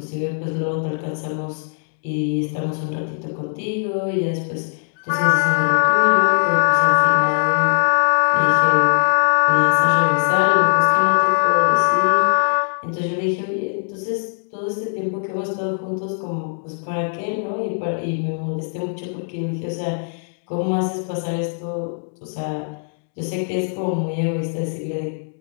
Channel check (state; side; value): silent; right; digital silence